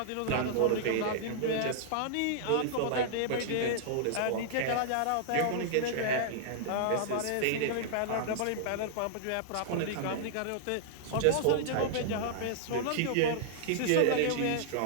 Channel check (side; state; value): both; different; correlation -0.01